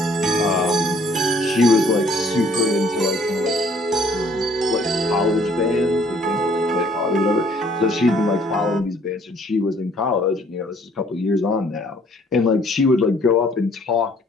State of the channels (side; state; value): both; normal; correlation 0.60